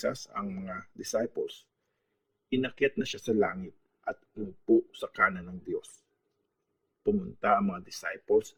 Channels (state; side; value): identical; both; correlation 1.00